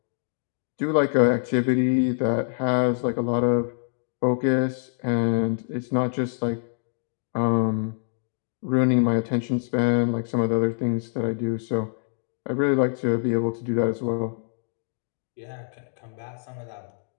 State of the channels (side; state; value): right; silent; digital silence